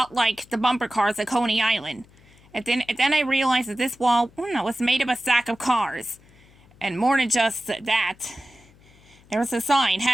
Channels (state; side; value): noise; left; hum, 27 dB below the sound